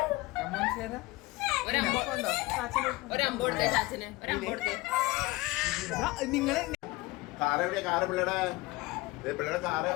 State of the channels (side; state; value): right; quieter; 21.1 dB